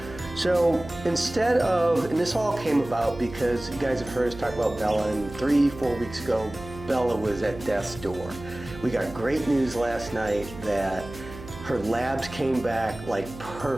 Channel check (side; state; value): right; noise; hum, 14 dB below the sound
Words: So instead of, and this all came about because you guys have heard us talk about Bella, and 3-4 weeks ago, Bella was at death's door. We got great news last night that her labs came back like